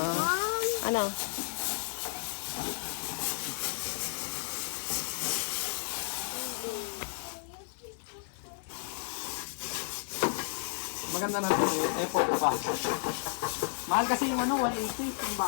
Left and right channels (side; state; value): right; silent; digital silence